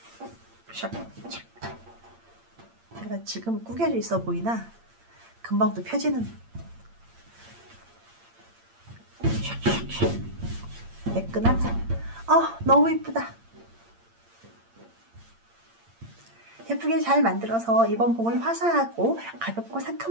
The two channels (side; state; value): left; late; 8.7 ms